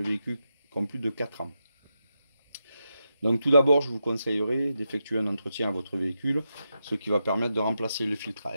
véhicules qui ont plus de 4 ans. Donc tout d'abord, je vous conseillerais d'effectuer un entretien à votre véhicule, ce qui va permettre de remplacer le filtre à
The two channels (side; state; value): both; inverted; correlation -0.86